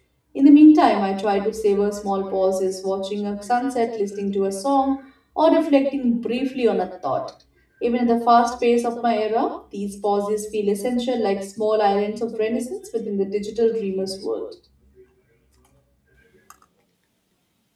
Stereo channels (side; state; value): both; identical; correlation 1.00